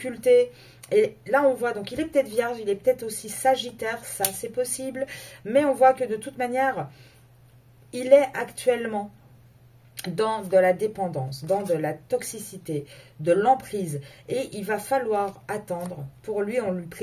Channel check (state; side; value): identical; both; correlation 1.00